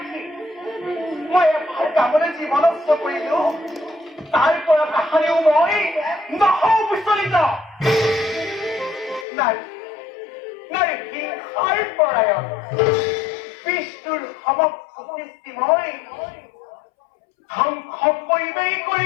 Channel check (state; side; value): drops out; right; at 9.2 s